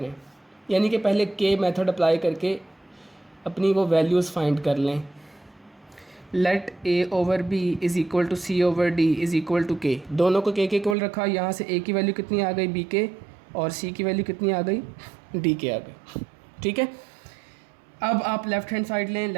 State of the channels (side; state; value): left; drops out; at 11.0 s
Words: यानी कि पहले k मेथड अप्लाई करके अपनी वो वैल्यूज़ फाइंड कर लें। Let a over b is equal to c over d is equal to k। दोनों को k के इक्वल रखा, यहाँ से a की वैल्यू कितनी आ गई b के, और c की वैल्यू कितनी आ गई d के आ गई। ठीक है, अब आप लेफ़्ट हैंड साइड लें।